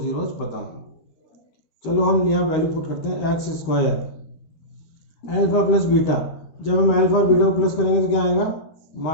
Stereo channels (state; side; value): late; right; 13 ms